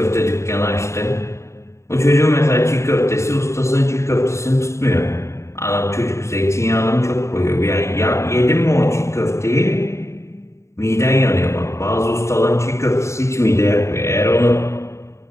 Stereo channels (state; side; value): late; right; 0.14 ms